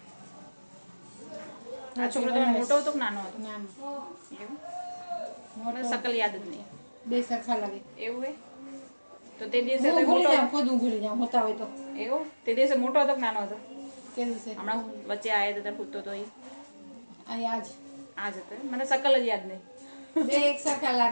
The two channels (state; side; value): inverted; both; correlation -1.00